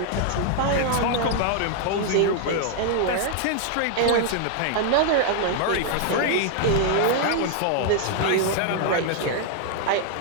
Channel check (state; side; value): different; both; correlation 0.00